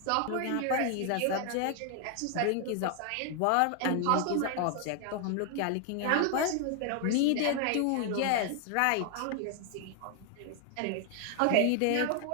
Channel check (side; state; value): both; different; correlation 0.00